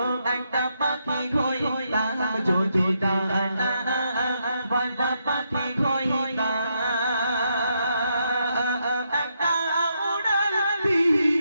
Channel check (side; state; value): both; inverted; correlation -0.79